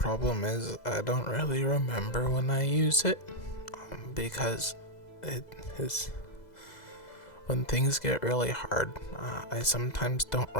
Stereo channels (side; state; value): right; late; 2.0 ms